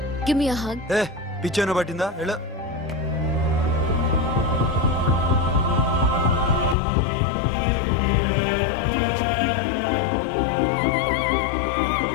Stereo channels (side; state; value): right; drops out; at 6.8 s